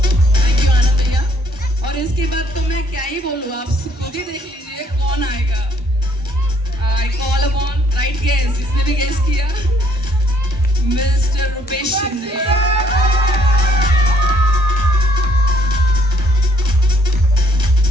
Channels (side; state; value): both; normal; correlation 0.65